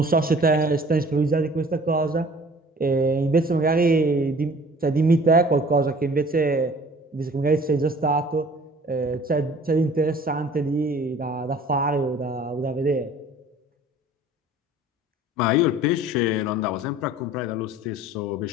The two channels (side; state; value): both; normal; correlation 0.50